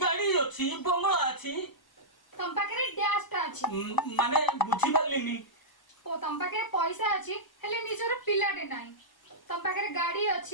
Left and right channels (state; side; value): late; right; 1.0 ms